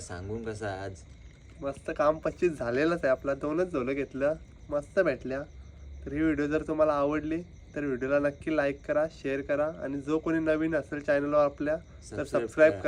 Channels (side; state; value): both; identical; correlation 1.00